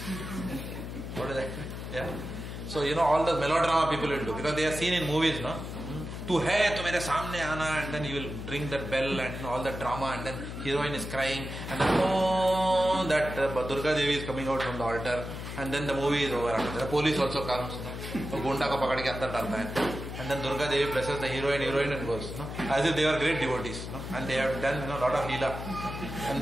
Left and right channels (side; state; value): left; noise; hum, 8 dB below the sound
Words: What is that? Yeah. So, all the melodrama people will do, because they are seen in movies, no? Tu hai, tu mere samne aana, and then you will ring that bell and all that drama, and then heroine is crying, and then that Durga Devi is coming out from the altar, and then the movie is over. The police also comes, so Gunda ko pakad ke andar dalta hai. And then Durga Devi blesses the heroine and goes, as if they were great devotees, and they have done a lot of leela and